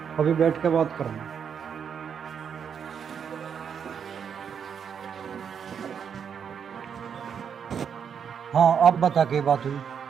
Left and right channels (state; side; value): quieter; left; 7.4 dB